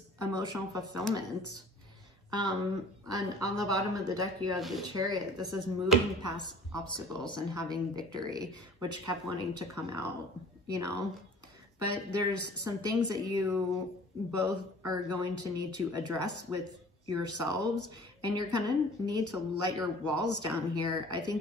emotional fulfillment. And on the bottom of the deck, you have the Chariot. This is moving past obstacles and having victory, which kept wanting to come out, you know? But there's some things that you both are going to need to address with yourselves, and you're gonna need to let your walls down here. I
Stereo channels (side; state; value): both; normal; correlation 0.48